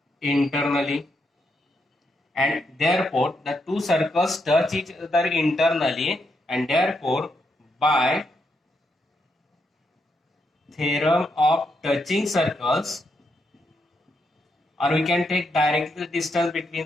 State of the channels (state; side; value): normal; both; correlation 0.80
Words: internally, and therefore the two circles touch each other internally and therefore by theorem of touching circles, or we can take directly the distance